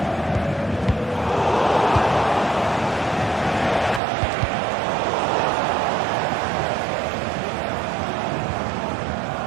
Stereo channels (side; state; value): left; drops out; at 4.0 s